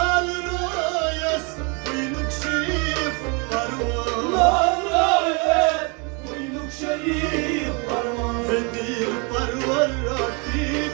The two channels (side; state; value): left; quieter; 32.7 dB